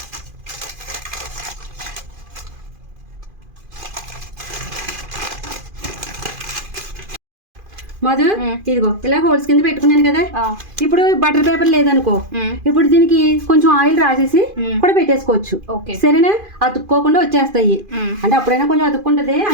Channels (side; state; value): left; late; 2.4 ms